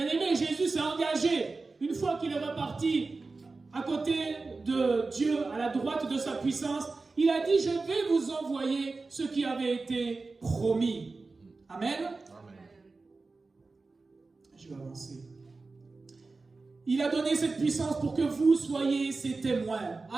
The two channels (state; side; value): quieter; left; 3.8 dB